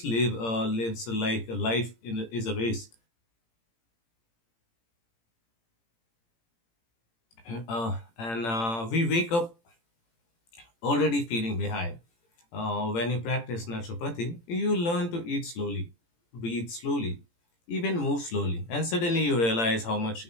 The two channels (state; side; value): late; right; 18 ms